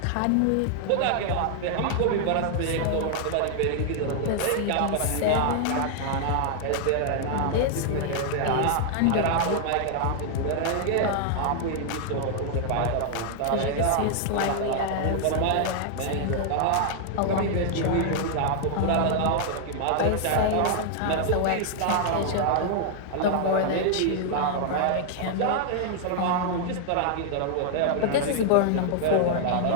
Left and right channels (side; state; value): both; different; correlation 0.00